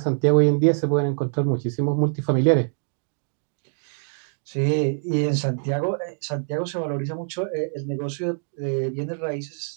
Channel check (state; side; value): silent; left; digital silence